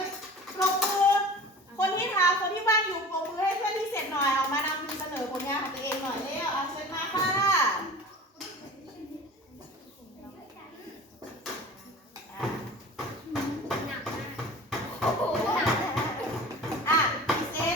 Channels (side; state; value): both; normal; correlation 0.39